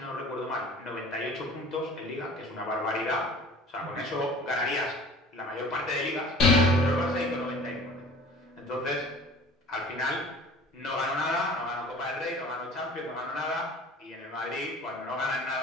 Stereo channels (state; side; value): normal; both; correlation 0.45